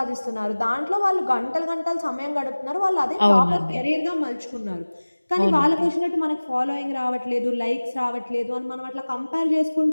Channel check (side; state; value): both; inverted; correlation -1.00